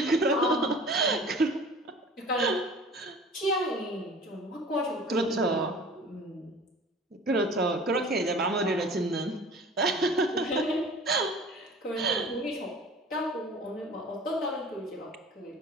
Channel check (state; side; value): normal; both; correlation 0.44